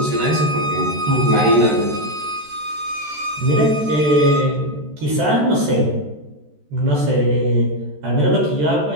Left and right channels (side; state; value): left; late; 14 ms